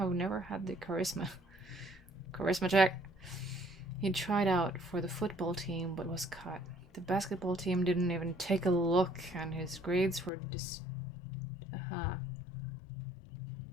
never had the charisma. Charisma check. He tried out for the football team, but was cut. The basketball team didn't even take a look, and his grades were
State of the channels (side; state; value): right; drops out; at 10.3 s